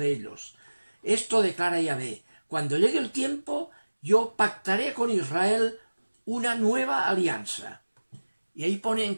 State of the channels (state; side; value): inverted; both; correlation -1.00